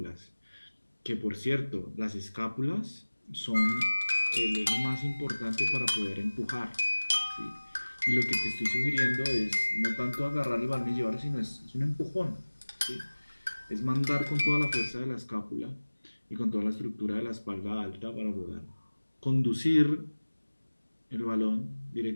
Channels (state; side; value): inverted; both; correlation -1.00